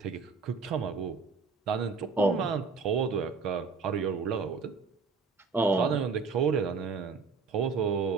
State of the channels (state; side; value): quieter; left; 4.8 dB